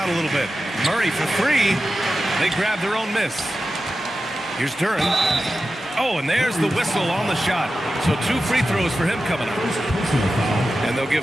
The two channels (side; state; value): both; normal; correlation 0.93